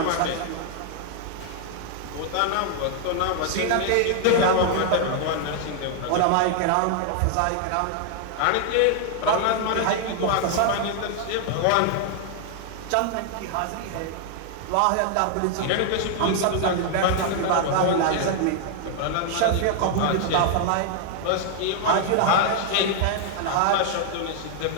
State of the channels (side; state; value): both; different; correlation 0.00